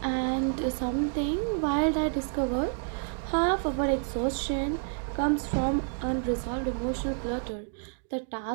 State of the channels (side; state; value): left; silent; 58 dB below the other